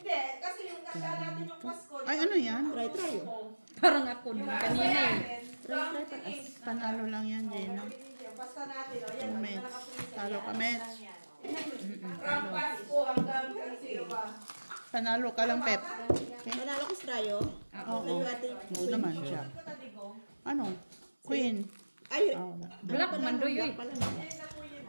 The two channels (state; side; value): inverted; both; correlation -1.00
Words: kasi yung nakita natin yung Pasko. ay ano yan? Try. Parang ako nung kanina eh. Panalo lang yan, Gina. Basta natin, o yan. Mets. Talo ka, Mets. From Pasko hanggang sino ba? Panalo ka lang, Pep. Okay? Manalo ko sa Rayo. Oo. Oo naman siya. Ito taligo. Ano? Queen. Ay, Oh, Black mandoy eh. Ayun na po yun